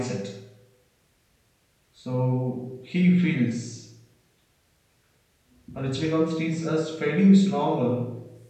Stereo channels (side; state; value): both; identical; correlation 1.00